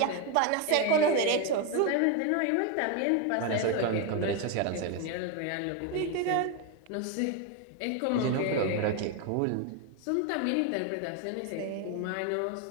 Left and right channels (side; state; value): both; different; correlation 0.02